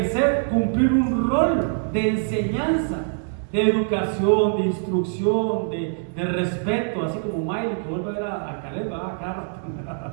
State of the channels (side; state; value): left; silent; digital silence